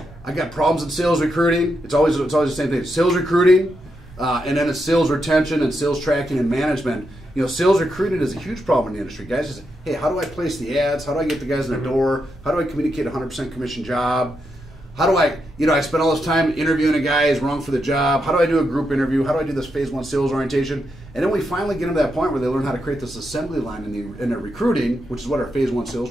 got problems in sales recruiting. It's always the same thing. Sales recruiting, and then it's sales retention and sales tracking and management. You know, sales recruiting is a huge problem in the industry. Guys just, hey, how do I place the ads? How do I get the guys in the door? How do I communicate a 100% commission job? How do I, I spend all this time interviewing a guy who's wrong for the job. How do I do a group interview? How do I do this phase 1 sales orientation? And then we finally get them to that point where they learn how to create this assembly line in their recruiting, which is what our phase 1 sales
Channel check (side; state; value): both; normal; correlation 0.83